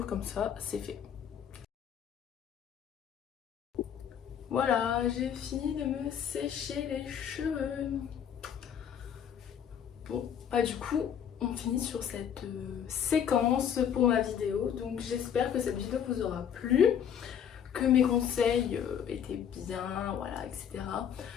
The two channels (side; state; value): right; quieter; 8.6 dB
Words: comme ça c'est fait. Voilà, j'ai fini de me sécher les cheveux. Bon, du coup on finit sur cette séquence pour ma vidéo. Donc j'espère que cette vidéo vous aura plu, que mes conseils étaient bien, voilà, etc.